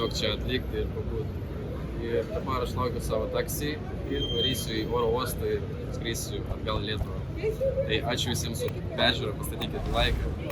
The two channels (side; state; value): both; identical; correlation 1.00